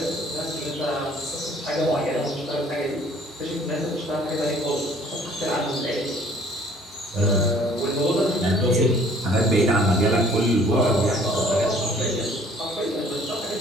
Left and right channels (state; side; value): normal; both; correlation 0.56